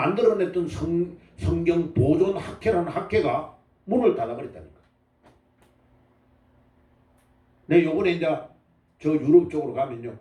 성경 보존 학회라는 학회가 문을 닫아버렸다니까. 내 요번에 이제 저 유럽 쪽으로 가면요.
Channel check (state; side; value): identical; both; correlation 1.00